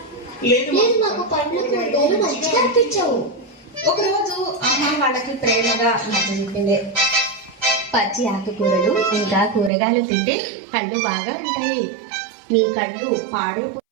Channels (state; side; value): drops out; left; at 9.7 s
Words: నాకు పండ్లు కూరగాయలు మంచిగా అనిపించావు. ఒకరోజు అమ్మ వాళ్ళకి ప్రేమగా నచ్చజెప్పింది. పచ్చి ఆకుకూరలు ఇంకా కూరగాయలు తింటే కళ్ళు బాగా ఉంటాయి. నీ కళ్ళు